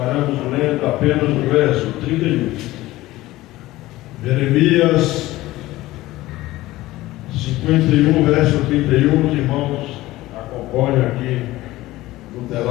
lendo apenas o verso 31. Jeremias 51, verso 31. Os irmãos acompanham aqui no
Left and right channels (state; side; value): quieter; right; 17.4 dB